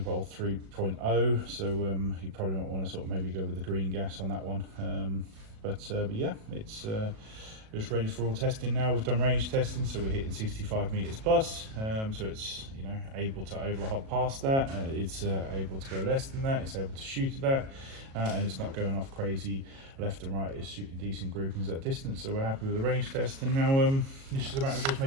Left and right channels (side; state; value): left; late; 37 ms